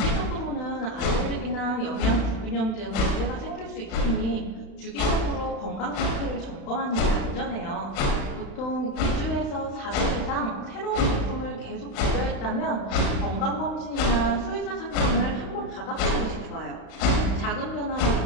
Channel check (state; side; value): late; right; 36 ms